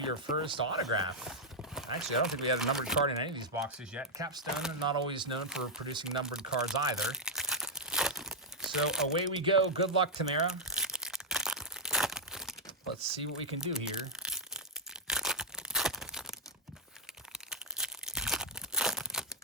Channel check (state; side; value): normal; both; correlation -0.03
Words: first autograph. Actually, I don't think we had a numbered card in any of these boxes yet. Capstone, not always known for producing numbered cards either. So away we go. Good luck, Tamara. Let's see what we can do here.